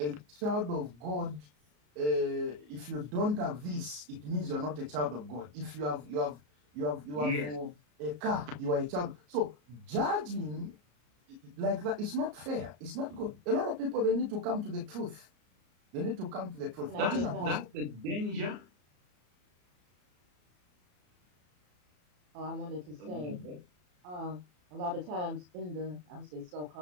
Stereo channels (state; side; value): late; left; 33 ms